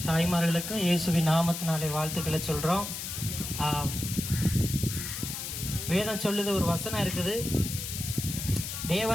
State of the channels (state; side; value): noise; left; hiss, 6 dB below the sound